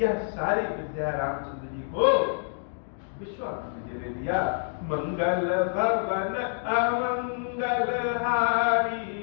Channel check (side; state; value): right; silent; digital silence